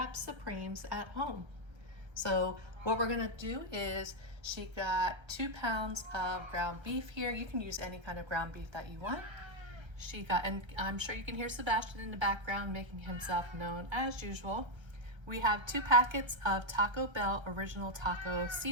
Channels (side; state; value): left; late; 1.3 ms